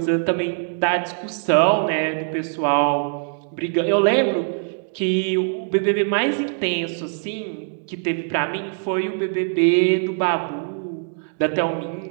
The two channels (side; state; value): left; silent; 64 dB below the other